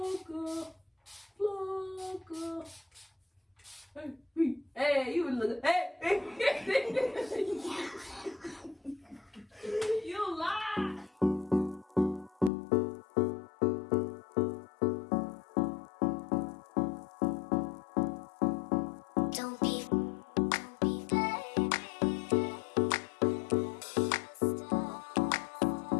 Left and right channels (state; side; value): drops out; right; at 12.5 s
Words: flocka. Hey, you look. Hey, you lie. Don't